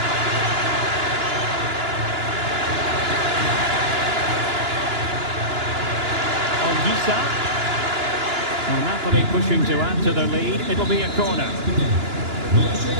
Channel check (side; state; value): left; late; 2.9 ms